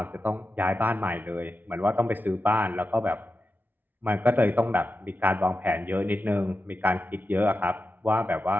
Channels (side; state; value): left; late; 0.087 ms